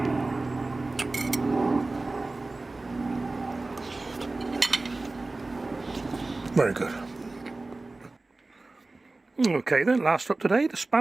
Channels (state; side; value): quieter; left; 3.2 dB